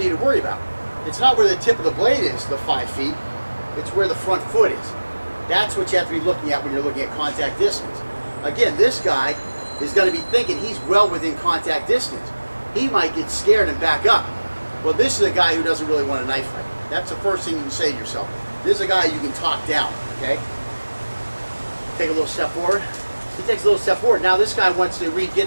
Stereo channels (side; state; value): both; inverted; correlation -1.00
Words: to worry about. It's not where the tip of the blade is, the 5 feet. It's where the front foot is. That's what you have to be looking at when you're looking at contact distance. Again, this guy is going to be thinking he's well within contact distance. He might get scared and back up. Well, this is a guy who doesn't really want a knife fight. That's the first thing you can say to yourself. This is a guy you can talk down, okay? Take a little step forward. He takes a little step forward. Now this guy wants to